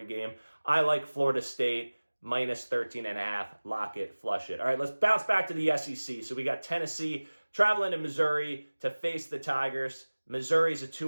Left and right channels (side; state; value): both; inverted; correlation -1.00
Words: game. I like Florida State. -13.5. Lock it, flush it. All right, let's bounce back to the SEC. So we got Tennessee traveling to Missouri to face the Tigers. Missouri's a